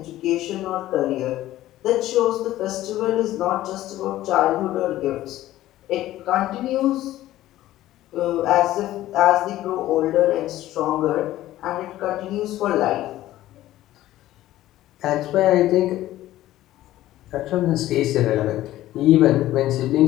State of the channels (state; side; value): quieter; right; 14.7 dB